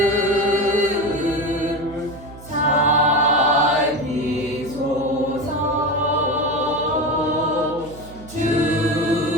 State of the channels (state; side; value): noise; right; hum, 18 dB below the sound